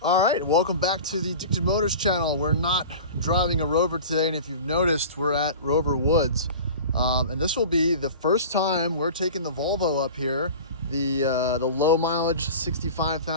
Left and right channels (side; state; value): both; inverted; correlation -0.37